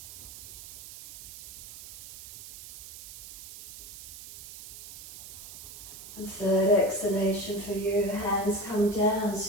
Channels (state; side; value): noise; right; hiss, 14 dB below the sound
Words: And third exhalation for you. Hands come down,